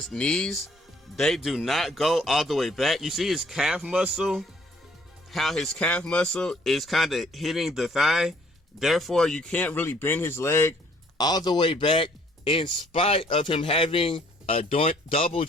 knees, they do not go all the way back. You see his calf muscle, how his calf muscle is kind of hitting the thigh. Therefore, you can't really bend his leg all the way back in spite of him having a double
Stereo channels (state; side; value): normal; both; correlation 0.61